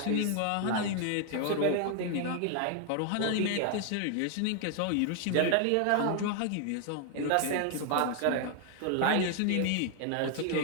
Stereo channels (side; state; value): both; different; correlation 0.00